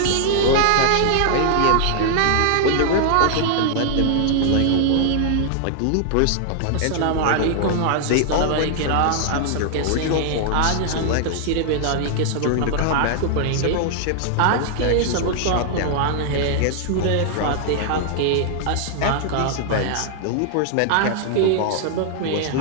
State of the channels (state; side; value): different; both; correlation 0.00